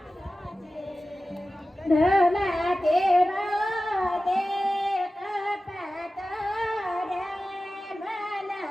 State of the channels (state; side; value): normal; both; correlation 0.95